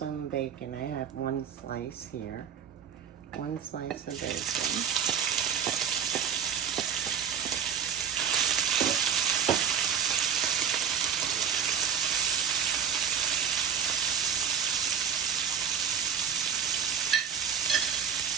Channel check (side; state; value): left; quieter; 8.0 dB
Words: bacon. I have one slice here. One slice of bacon.